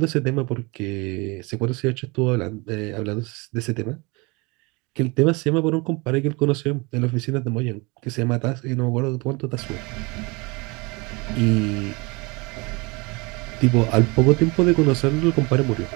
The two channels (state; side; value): quieter; left; 26.9 dB